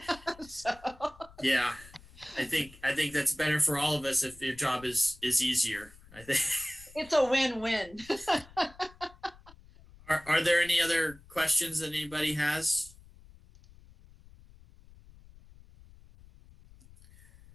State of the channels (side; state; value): left; noise; rumble, 23 dB below the sound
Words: So yeah, I think that's better for all of us if your job is easier. I think it's a win-win. Are there any other questions that anybody has?